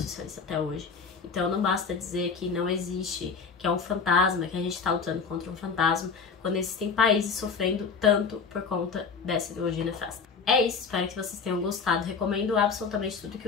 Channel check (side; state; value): right; quieter; 5.4 dB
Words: até hoje. Então não basta dizer que não existe, que é um fantasma, que a gente está lutando contra um fantasma, quando existem países sofrendo tanto por conta dessa ideologia nefasta. É isso, espero que vocês tenham gostado. Recomendo absolutamente tudo